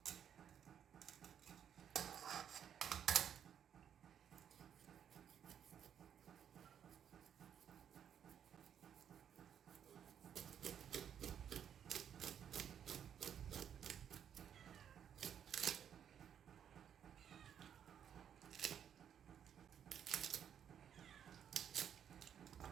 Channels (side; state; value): left; quieter; 8.9 dB